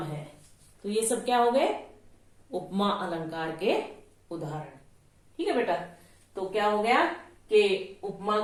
है, तो ये सब क्या हो गए, उपमा अलंकार के उदाहरण। ठीक है बेटा, तो क्या हो गया कि उपमा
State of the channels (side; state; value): both; identical; correlation 1.00